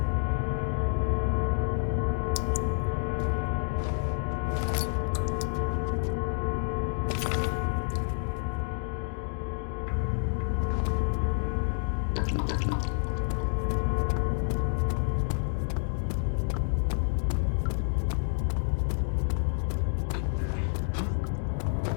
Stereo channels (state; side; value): silent; right; digital silence